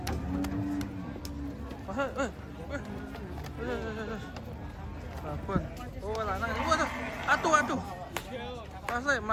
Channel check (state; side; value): identical; both; correlation 1.00